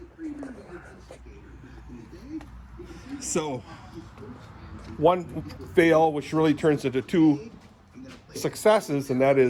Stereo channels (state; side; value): identical; both; correlation 1.00